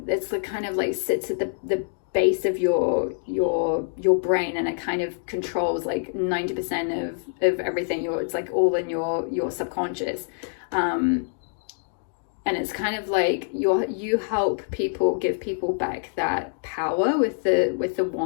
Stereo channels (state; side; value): silent; right; digital silence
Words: it's the kind of like sits at the base of your brain, and it kind of controls like 90% of everything. It's like all in your subconscious. And it's kind of like you help people, give people back that power with the